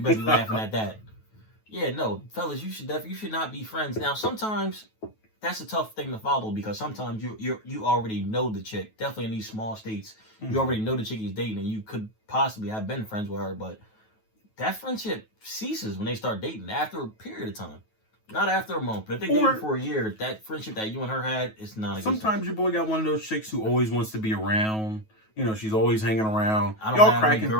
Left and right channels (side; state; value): right; late; 9.3 ms